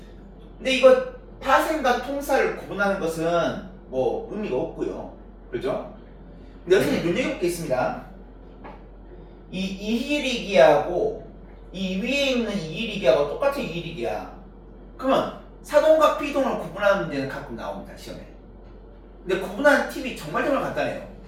근데 이거 파생과 통사를 구분하는 것은 뭐 의미가 없고요. 그죠? 근데 여기서 눈여겨볼 게 있습니다. 이 이희리기하고 이 위에 있는 이희리기하고 똑같은 이희리기야. 그러면 사동과 피동을 구분하는 문제는 가끔 나옵니다. 시험에. 근데 구분하는 팁이 정말 간단해요.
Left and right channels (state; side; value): identical; both; correlation 1.00